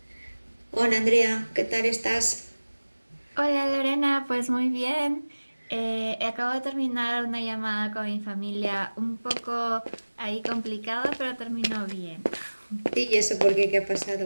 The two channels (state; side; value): inverted; both; correlation -1.00